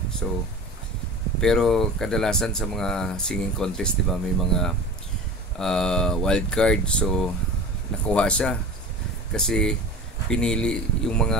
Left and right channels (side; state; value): both; normal; correlation 0.35